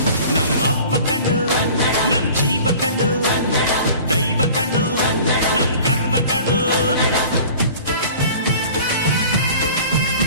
ನಮ್ಮ ಅವ್ವ ಕಣ್ಣು, ನಮ್ ಜೀವ ಕಣ್ಣು, ದೈವ ಕಣ್ಣು, ನಮ್ ಗರ್ವ ಕಣ್ಣು.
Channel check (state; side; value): inverted; both; correlation -0.44